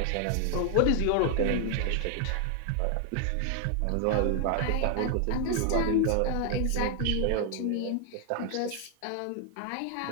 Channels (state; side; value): different; both; correlation 0.00